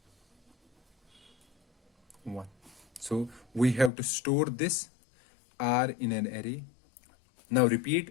1. So we have to store this R in an array. Now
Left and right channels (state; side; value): drops out; right; at 3.9 s